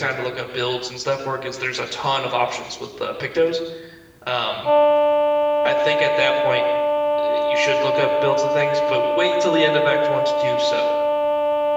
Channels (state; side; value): identical; both; correlation 1.00